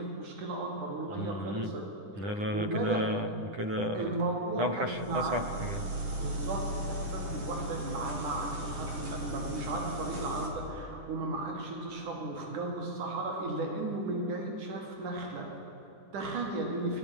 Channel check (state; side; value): late; left; 9.9 ms